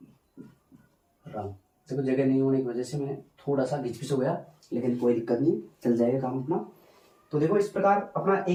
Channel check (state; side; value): identical; both; correlation 1.00